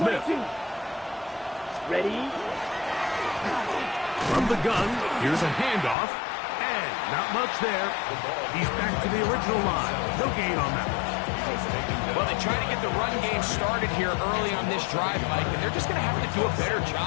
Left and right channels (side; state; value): right; drops out; at 6.0 s